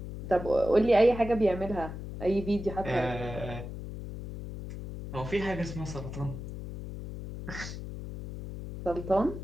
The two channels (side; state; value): left; noise; hum, 9 dB below the sound